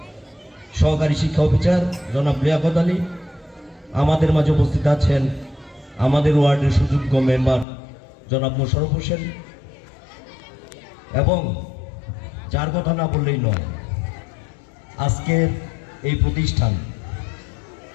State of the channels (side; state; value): right; drops out; at 7.7 s